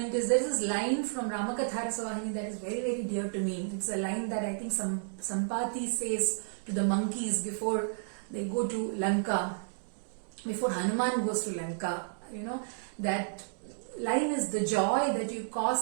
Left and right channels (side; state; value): left; silent; digital silence